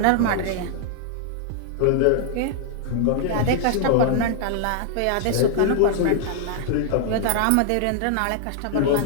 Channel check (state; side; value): different; both; correlation -0.01